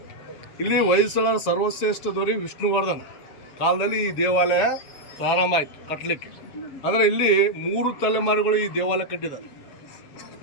ಇಲ್ಲಿ ಹೊಯ್ಸಳರ ಸರ್ವಶ್ರೇಷ್ಠ ದೊರೆ ವಿಷ್ಣುವರ್ಧನ್ ಕಾಲದಲ್ಲಿ ಈ ದೇವಾಲಯ ಪ್ರಾರಂಭ ಆಯಿತು ಕಟ್ಟಲಿಕ್ಕೆ. ಅಂದರೆ ಇಲ್ಲಿ 3 ತಲೆಮಾರುಗಳು ಈ ದೇವಾಲಯ ಕಟ್ಟಿದ್ದಾರೆ.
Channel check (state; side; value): late; right; 7.0 ms